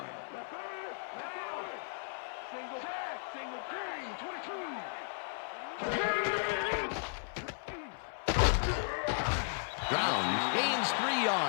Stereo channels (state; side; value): silent; right; 54 dB below the other